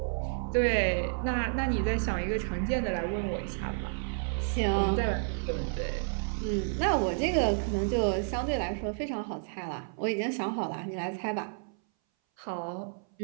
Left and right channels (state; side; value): silent; left; 57 dB below the other